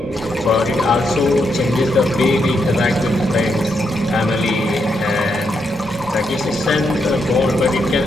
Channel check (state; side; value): normal; both; correlation 0.80